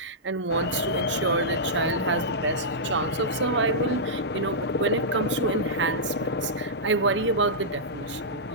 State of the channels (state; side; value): normal; both; correlation -0.12